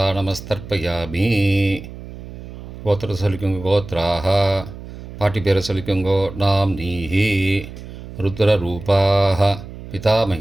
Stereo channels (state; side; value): noise; right; hum, 13 dB below the sound